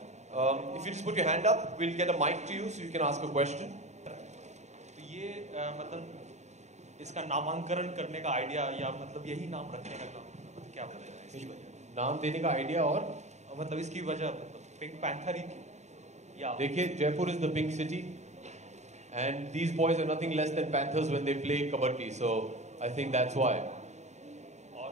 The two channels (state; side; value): late; left; 0.33 ms